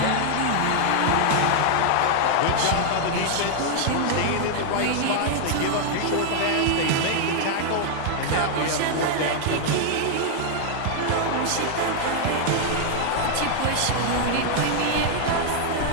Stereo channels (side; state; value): both; different; correlation 0.00